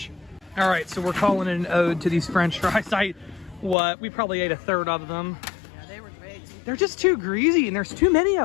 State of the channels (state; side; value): drops out; right; at 3.8 s